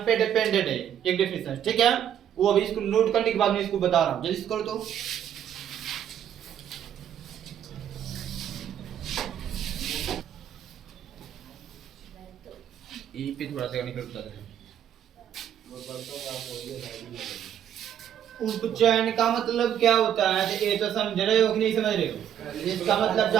पे डिपेंडेंट है, एक डेफिनेशन, ठीक है। वो अभी इसको नोट करने के बाद मैं इसको बता रहा हूँ, जल्दी से करो तो। ई पे थोड़ा सा निकल बता रहे हैं। उपचयन का मतलब क्या होता है, तो ये तो समझ रहे हो कि नहीं समझ रहे हो? इसका मतलब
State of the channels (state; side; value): quieter; left; 9.8 dB